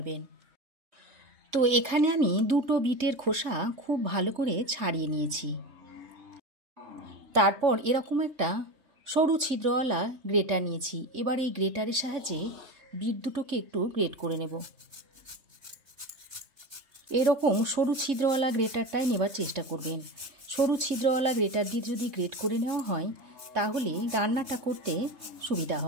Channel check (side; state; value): left; late; 3.6 ms